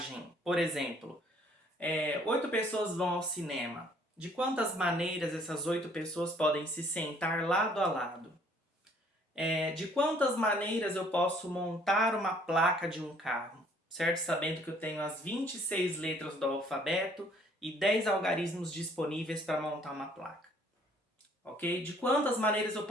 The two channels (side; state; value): both; normal; correlation 0.60